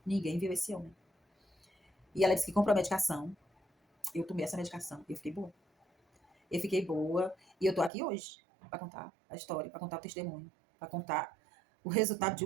Ninguém viu esse homem. E ela disse que comprou a medicação. Eu tomei essa medicação e eu fiquei boa. Eu fiquei boa e eu tô aqui hoje para contar a história, para contar o testemunho, para contar o resultado de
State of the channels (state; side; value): drops out; left; at 7.9 s